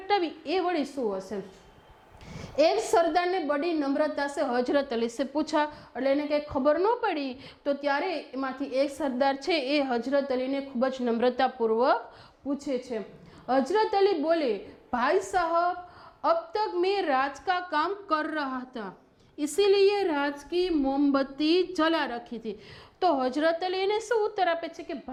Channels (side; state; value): both; identical; correlation 1.00